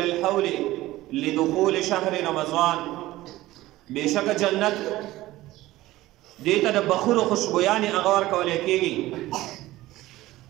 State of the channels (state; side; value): quieter; left; 17.0 dB